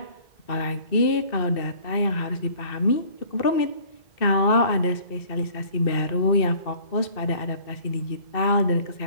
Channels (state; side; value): late; right; 2.6 ms